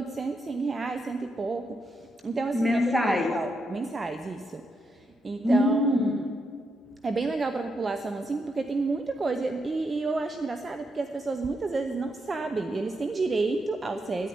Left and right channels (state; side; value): normal; both; correlation 0.82